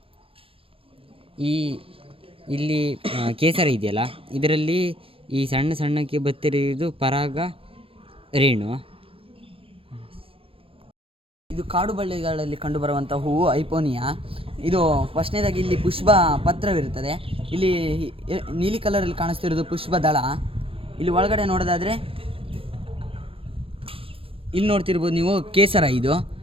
ಇಲ್ಲಿ ಕೇಸರ ಇದೆಯಲ್ಲ, ಇದರಲ್ಲಿ ಈ ಸಣ್ಣಕ್ಕೆ ಬತ್ತಿರುವುದು ಪರಾಗ ರೇಣು. ಇದು ಕಾಡು ಬಳ್ಳಿಗಳಲ್ಲಿ ಕಂಡುಬರುವಂಥ ಹೂವು ಐಪೋನಿಯಾ. ಇದು ಫಸ್ಟ್ನೇದಾಗಿ ಇಲ್ಲಿ ಪುಷ್ಪ ಪತ್ರವಿರುತ್ತದೆ. ಇಲ್ಲಿ ನೀಲಿ ಕಲರಲ್ಲಿ ಕಾಣಿಸ್ತಿರೋದು ಪುಷ್ಪದಳ. ಇಲ್ಲಿ ಒಳಗಡೆ ನೋಡೋದಾದರೆ ಇಲ್ಲಿ ನೋಡ್ತಿರ್ಬೋದು ನೀವು ಕೇಸರ.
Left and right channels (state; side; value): late; left; 0.27 ms